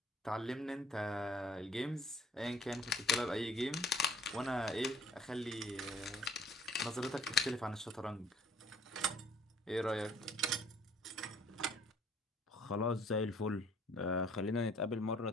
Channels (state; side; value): normal; both; correlation 0.57